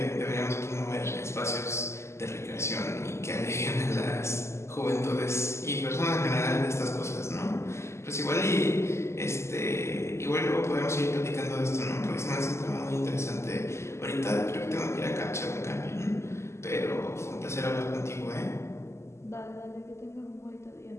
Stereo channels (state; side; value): late; right; 0.13 ms